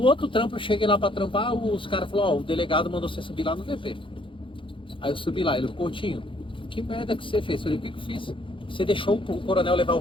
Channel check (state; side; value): late; right; 0.25 ms